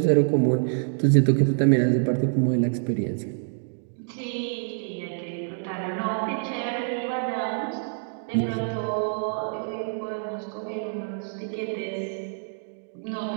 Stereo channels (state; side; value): silent; left; digital silence